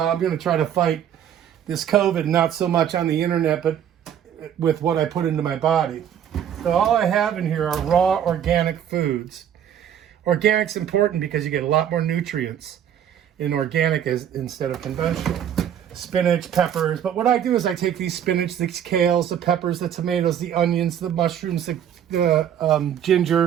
going to try to fight this COVID, not so much on the internet, but with what I put into my body. So all I have in here are raw organic foods. Organic's important because you get a lot more nutrients in organic instead of conventional. Spinach, peppers. But what I do is I take these spinach, the kales, the peppers, the tomatoes, the onions, the mushrooms, the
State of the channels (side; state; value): left; quieter; 9.5 dB